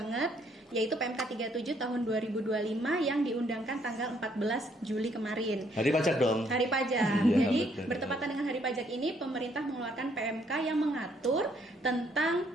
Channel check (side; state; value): both; normal; correlation 0.68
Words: yaitu PMK 37 tahun 2025 yang diundangkan tanggal 14 Juli kemarin. Hari pajak dong. Hari pajak. Ya, Jadi betul. bertepatan dengan hari pajak ini, pemerintah mengeluarkan PMK yang mengatur